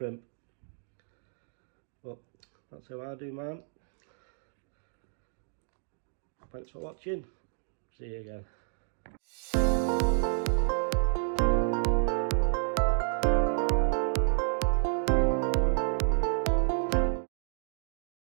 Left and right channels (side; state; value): left; silent; digital silence